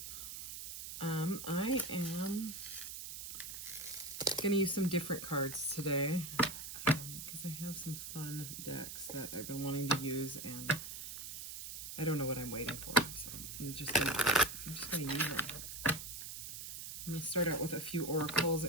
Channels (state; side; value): noise; right; hiss, 8 dB below the sound